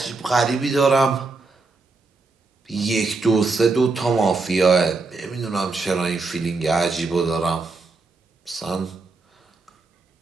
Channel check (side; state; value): left; quieter; 3.8 dB